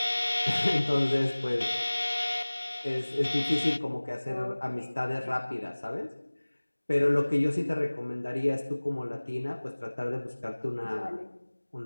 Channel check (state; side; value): inverted; both; correlation -1.00